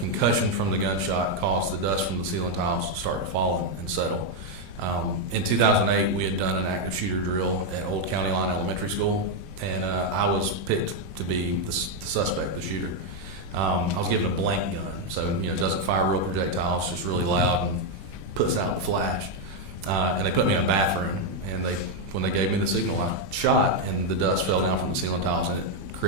from the gunshot caused the dust from the ceiling tiles to start to fall and settle. In 2008, we had done an active shooter drill at Old County Line Elementary School, and I was picked to be the suspect, the shooter. I was given a blank gun, so it doesn't fire real projectiles, just really loud and puts out the flash. And they put me in a bathroom, and when they gave me the signal, I shot, and the dust fell down from the ceiling tiles, and it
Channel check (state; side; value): late; left; 21 ms